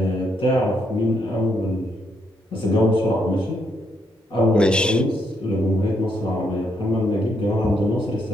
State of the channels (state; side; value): normal; both; correlation 0.76